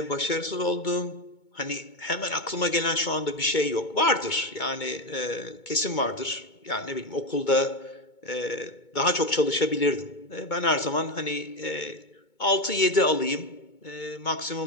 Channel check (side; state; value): right; late; 2.2 ms